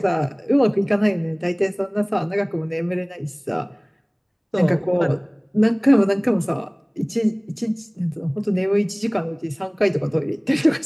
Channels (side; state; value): both; identical; correlation 1.00